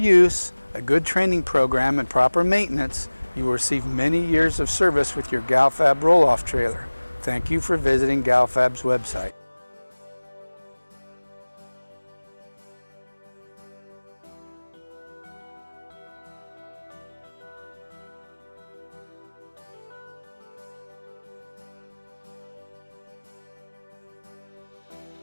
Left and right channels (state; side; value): inverted; both; correlation -1.00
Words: a good training program, and proper maintenance, you will receive many years of service with your GalFab Rolloff trailer. Thank you for visiting GalFab's website.